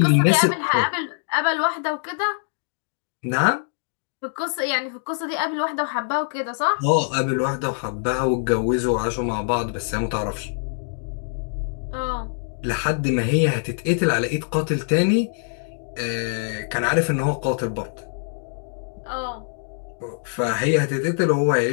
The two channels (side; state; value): right; silent; digital silence